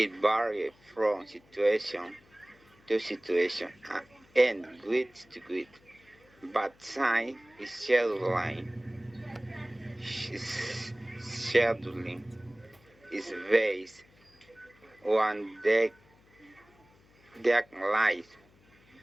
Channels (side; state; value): left; noise; hum, 29 dB below the sound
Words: varies from situation to situation and grid to grid. But time is scheduling is based on deadlines.